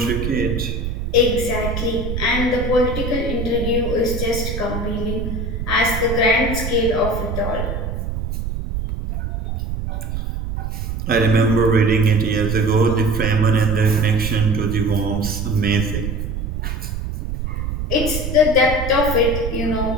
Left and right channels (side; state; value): right; noise; rumble, 4 dB below the sound